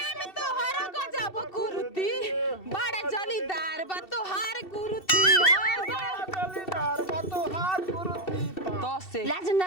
में तो हर गजब कुरुती बड़ा जलीदार बा तोहार कुरुती जलीदार बा तोहार कुरुती तो से लाज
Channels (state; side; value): late; right; 2.7 ms